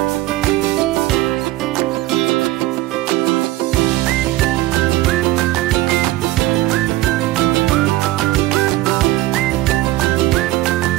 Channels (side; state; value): left; quieter; 17.3 dB